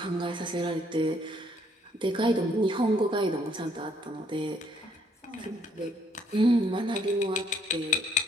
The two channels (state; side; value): normal; both; correlation 0.66